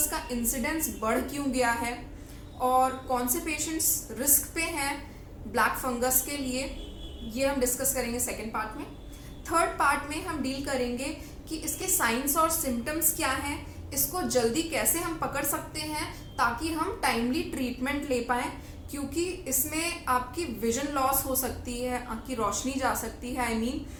का इंसिडेंस बढ़ क्यों गया है और कौन से पेशेंट्स रिस्क पे हैं ब्लैक फंगस के लिए, ये हम डिस्कस करेंगे सेकेंड पार्ट में। थर्ड पार्ट में हम डील करेंगे कि इसके साइंस और सिम्टम्स क्या हैं, इसको जल्दी कैसे हम पकड़ सकते हैं ताकि हम टाइमली ट्रीटमेंट ले पाएँ, क्योंकि इसमें आपकी विजन लॉस हो सकती है, आपकी रोशनी जा सकती है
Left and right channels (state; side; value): identical; both; correlation 1.00